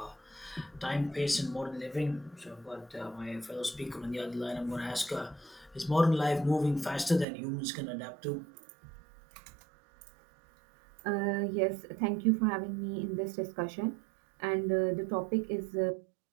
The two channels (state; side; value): drops out; left; at 7.2 s